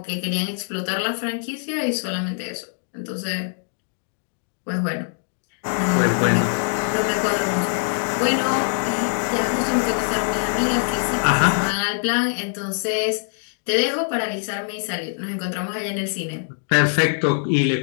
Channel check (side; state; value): right; silent; digital silence